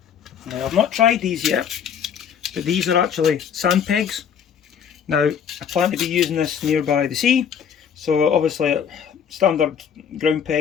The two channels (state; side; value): quieter; right; 7.8 dB